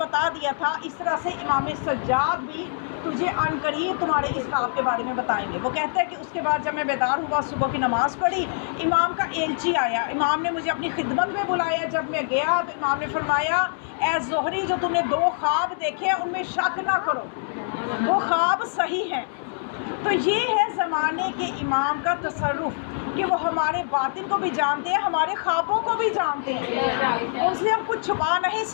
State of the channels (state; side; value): silent; right; digital silence